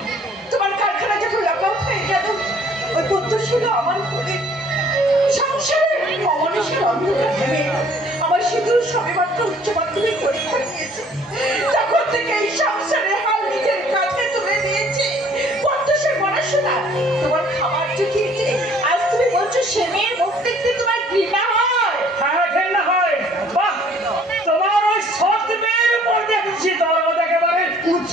তোমার কারখানা যখন লকআউট হয়ে গেল, ওই পুত্র ছিল আমার ঘরে সংসারে অমানুষের অন্ধকার নেমে এলো। আমার সিঁদুর সবেমাত্র উচ্চ মাধ্যমিক পরীক্ষা দিয়েছে, তখন থেকে এই সংসারে হাল নিজের কাছে তুলে দিয়েছে। পদ্মসের পড়াশোনা তোমার খাবার জুটিয়েছে, আজ তুমি বলছো সে মেয়ের মুখ দেখতে তোমার ঘৃণা হয়? হ্যাঁ ঘেন্না হয়। বাহ, তোমার ওই সৎ মেয়ের উপর দেখছি দরদ একেবারে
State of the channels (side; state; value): both; normal; correlation 0.57